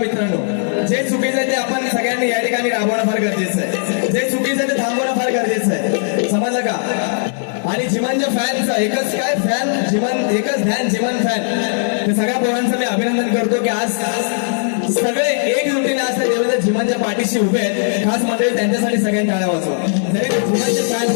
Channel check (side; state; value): right; silent; digital silence